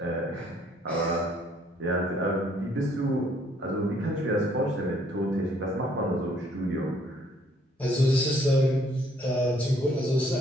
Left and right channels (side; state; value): both; normal; correlation 0.64